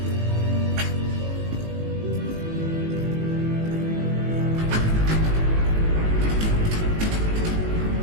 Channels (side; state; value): left; late; 19 ms